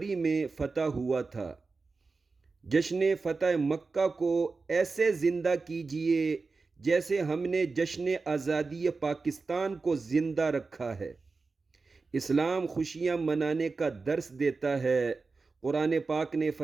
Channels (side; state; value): left; quieter; 4.1 dB